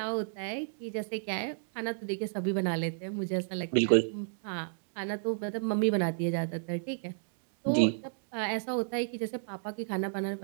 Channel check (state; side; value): silent; left; digital silence